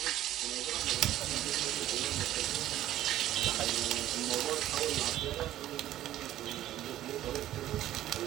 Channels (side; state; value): left; quieter; 13.2 dB